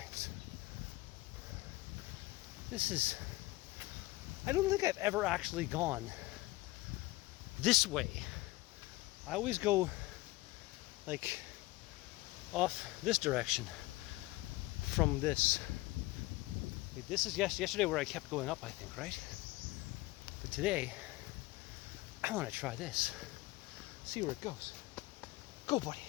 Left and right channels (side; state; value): right; quieter; 20.2 dB